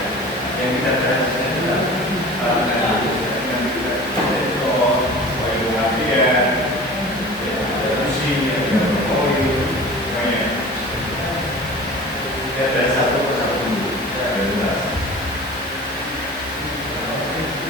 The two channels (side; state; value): both; normal; correlation 0.39